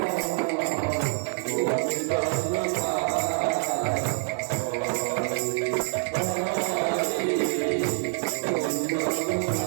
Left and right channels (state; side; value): silent; left; 61 dB below the other